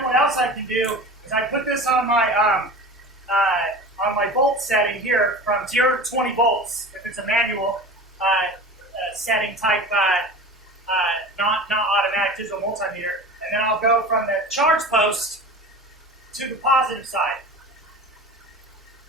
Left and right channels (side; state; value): both; normal; correlation 0.35